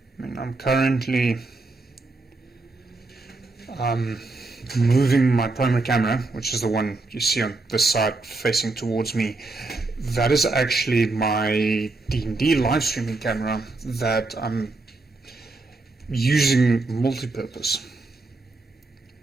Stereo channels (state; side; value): quieter; left; 3.3 dB